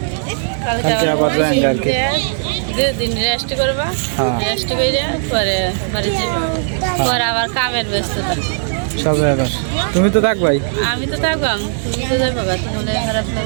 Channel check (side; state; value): left; silent; digital silence